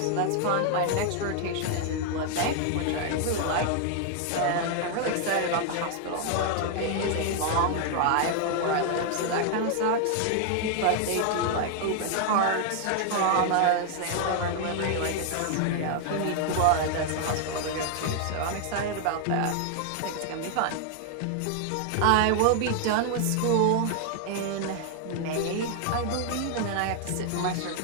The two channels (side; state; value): both; different; correlation 0.00